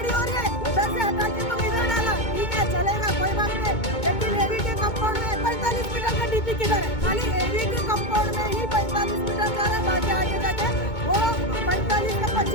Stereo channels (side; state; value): right; late; 2.2 ms